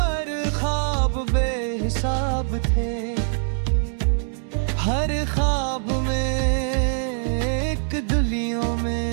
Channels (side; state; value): left; silent; digital silence